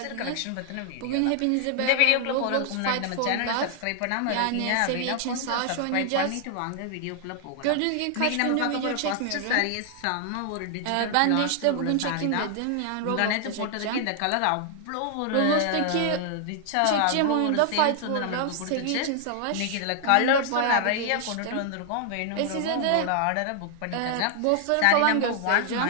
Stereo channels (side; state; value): both; different; correlation 0.00